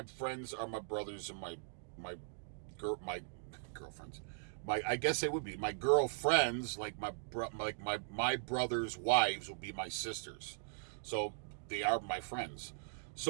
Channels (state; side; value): silent; left; digital silence